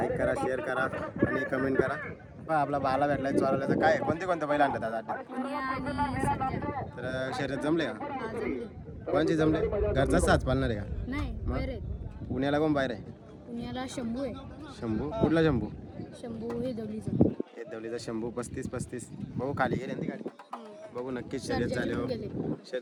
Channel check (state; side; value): identical; both; correlation 1.00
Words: करा, शेअर करा आणि कमेंट करा. आपला बाला भेटलाय चोरवल्याचं काय कोणते बैल आणतात आज अड्ड्यात? तर शर्यत जमले का? कोणची जमले? घरचाच साच पालणार आहे का? नाही, बाहेर आहेत. पुण्याला कोण बाहेर आहे? पुण्याला शंभू आहे. शंभू. कुठला शंभू? शंभू हे दवलीचा. हे दवलीचा शंभू. 35 भाऊ खाली गेले ती गाडी. बघू नक्कीच शर्यत चालू हो.